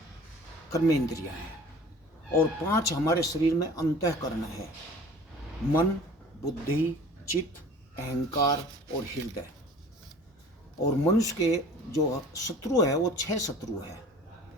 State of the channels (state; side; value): normal; both; correlation 0.45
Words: कर्मेंद्रियां हैं। और 5 हमारे शरीर में अंतःकरण है, मन, बुद्धि, चित्त, अहंकार और हृदय। और मनुष्य के जो शत्रु है वो 6 शत्रु है,